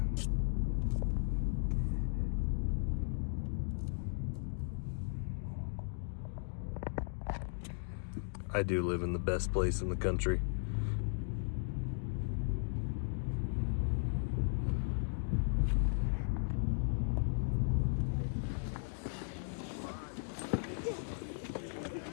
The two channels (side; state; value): right; silent; digital silence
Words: I do live in the best place in the country.